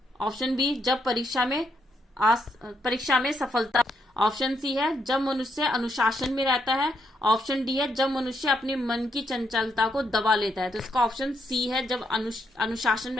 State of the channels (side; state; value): both; normal; correlation 0.77